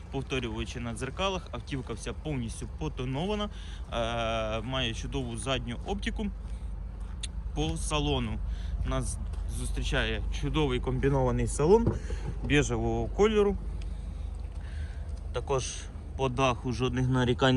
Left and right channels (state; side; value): identical; both; correlation 1.00